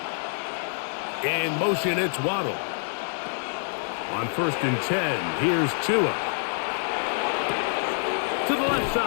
In motion, it's Waddle. On 1st and 10, here's Tua. To the left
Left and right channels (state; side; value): silent; right; digital silence